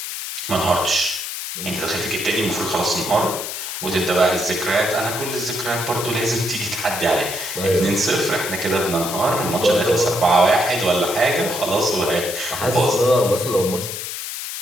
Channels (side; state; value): left; noise; hiss, 6 dB below the sound